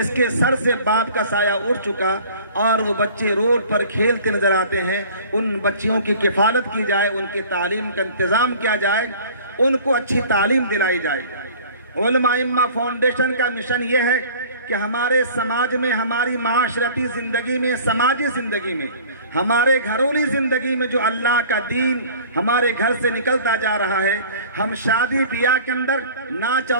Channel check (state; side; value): inverted; both; correlation -0.47